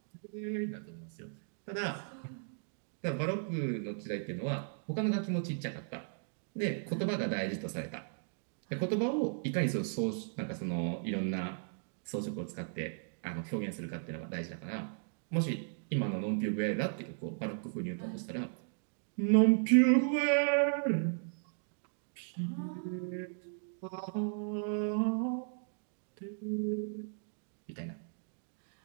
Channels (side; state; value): left; silent; digital silence